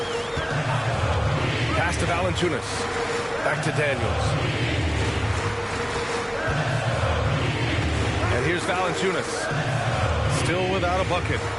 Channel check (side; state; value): both; identical; correlation 1.00